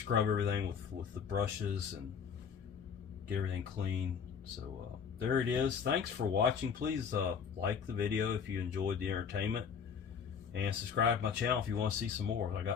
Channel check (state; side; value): quieter; right; 6.8 dB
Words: everything with the brushes and get everything clean. So there it is. Thanks for watching. Please like the video if you enjoyed the entertainment, and subscribe to my channel if you want to see some more. I